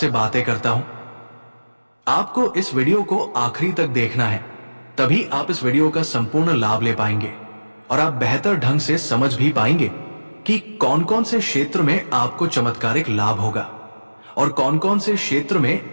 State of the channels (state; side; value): inverted; both; correlation -1.00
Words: बातें करता हूं। आपको इस वीडियो को आखिरी तक देखना है, तभी आप इस वीडियो का संपूर्ण लाभ ले पाएंगे और आप बेहतर ढंग से समझ भी पाएंगे कि कौन कौन से क्षेत्र में आपको चमत्कारिक लाभ होगा और कौन कौन से क्षेत्र